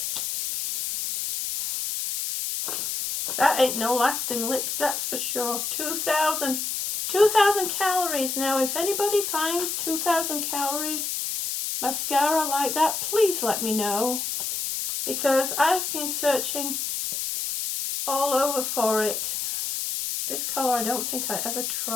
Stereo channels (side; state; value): left; noise; hiss, 2 dB below the sound